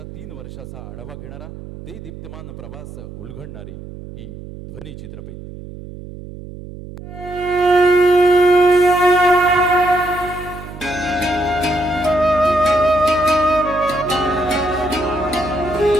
3 वर्षाचा आढावा घेणारा देदीप्यमान प्रवास उलगडणारी ही ध्वनी चित्रफित.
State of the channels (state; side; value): noise; right; hum, 13 dB below the sound